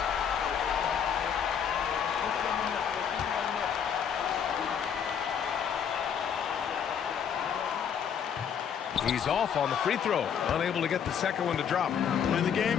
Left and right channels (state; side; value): quieter; right; 7.9 dB